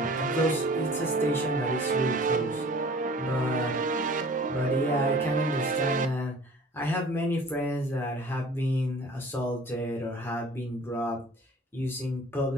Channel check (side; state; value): both; normal; correlation 0.47